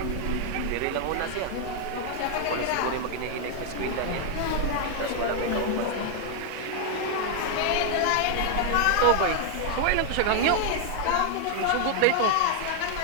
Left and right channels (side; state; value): both; different; correlation 0.00